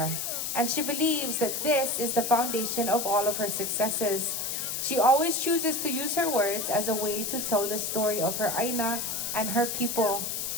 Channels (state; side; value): noise; left; hiss, 2 dB below the sound